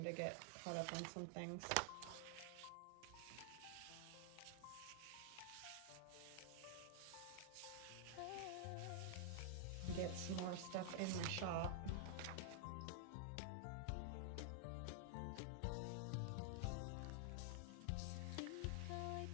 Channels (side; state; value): both; different; correlation -0.01